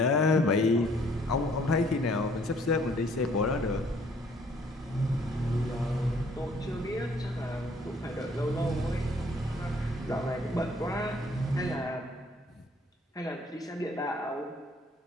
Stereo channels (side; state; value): both; normal; correlation 0.61